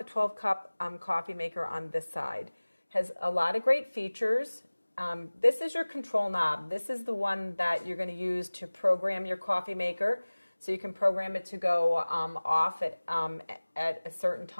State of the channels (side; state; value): both; inverted; correlation -1.00